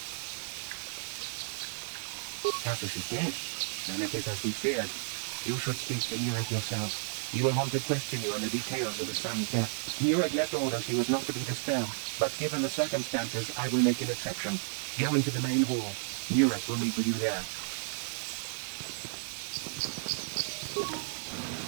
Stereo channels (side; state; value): left; silent; digital silence